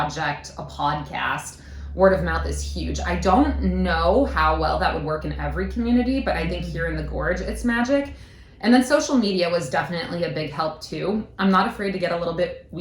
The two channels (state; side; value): identical; both; correlation 1.00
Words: a podcast. Word of mouth is huge. I don't know how well that would work in every community, but I think here in the Gorge, it's magic. And then social media was definitely a big help too. I'm not afraid to get a little bit